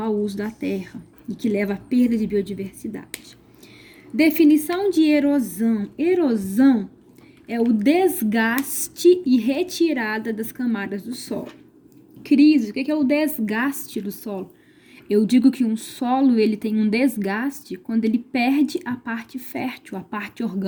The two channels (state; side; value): identical; both; correlation 1.00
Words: uso da terra e que leva à perda de biodiversidade. Definição de erosão. Erosão é o desgaste e retirada das camadas do solo. Crise, o que é o desgaste do solo? Eu digo que um solo ele tem um desgaste quando ele perde a parte fértil, a parte